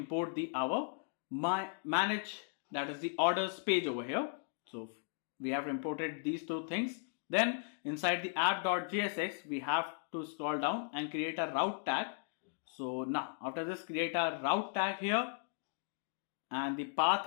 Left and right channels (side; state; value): right; silent; digital silence